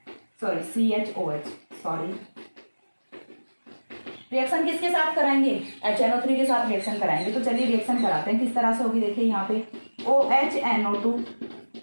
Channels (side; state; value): both; inverted; correlation -1.00